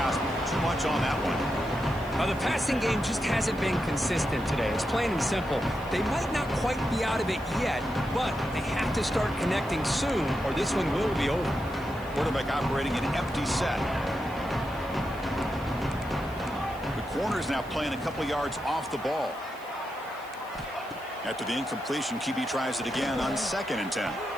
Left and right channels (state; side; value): noise; right; hiss, 24 dB below the sound